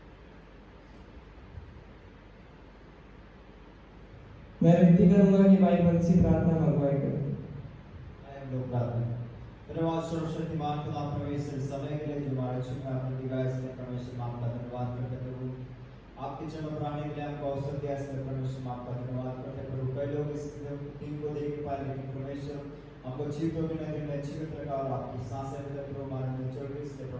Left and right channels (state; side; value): identical; both; correlation 1.00